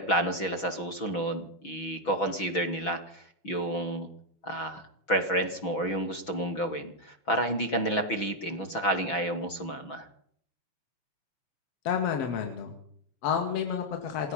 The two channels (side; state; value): right; late; 6.1 ms